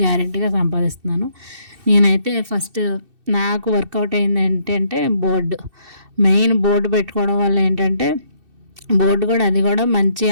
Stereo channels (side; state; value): left; late; 2.7 ms